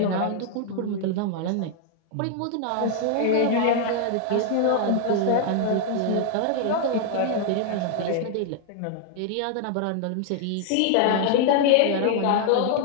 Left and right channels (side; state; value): both; different; correlation 0.00